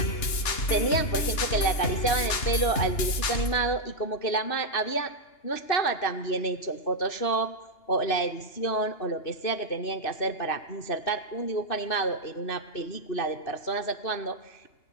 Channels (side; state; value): right; late; 2.9 ms